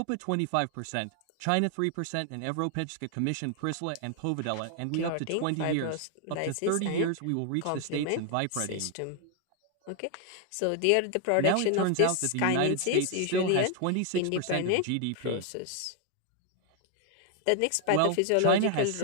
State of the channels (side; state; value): both; different; correlation 0.00